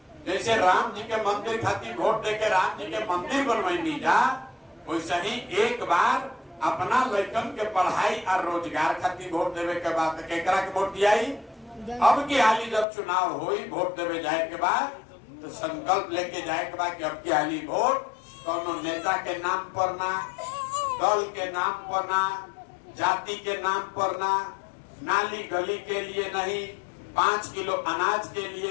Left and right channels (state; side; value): drops out; right; at 12.9 s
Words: जैसे राम जी के मंदिर खातिर वोट दे के राम जी के मंदिर बनवानी जा, वैसे ही एक बार अपना लड़कन के पढ़ाई और रोजगार खातिर वोट देवे के बाद केकरा के वोट दिया। अब की हाली जब चुनाव हुई, वोट देवे जाए के बाद तो संकल्प लेके जाए के बाद कि अब की हाली वोट कोनो नेता के नाम पर ना, दल के नाम पर ना, जाति के नाम पर ना, नाली गली के लिए नहीं, 5 किलो अनाज के